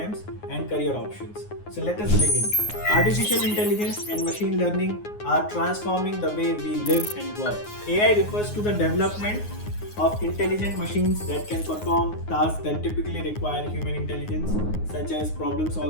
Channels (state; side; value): late; right; 9.6 ms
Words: and career options. So let us begin. Artificial intelligence and machine learning are transforming the way we live and work. AI refers to the development of intelligent machines that can perform tasks that typically require human intelligence, such as problem